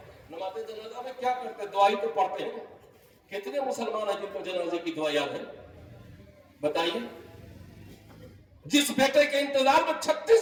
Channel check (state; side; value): identical; both; correlation 1.00